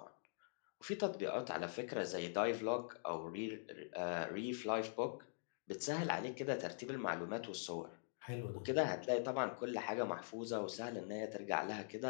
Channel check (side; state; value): right; silent; digital silence